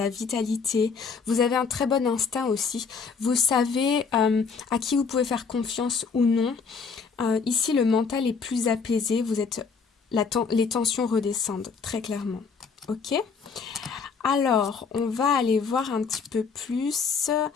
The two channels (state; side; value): quieter; right; 5.3 dB